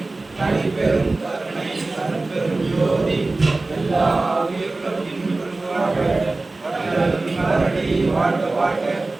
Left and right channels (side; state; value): left; quieter; 3.2 dB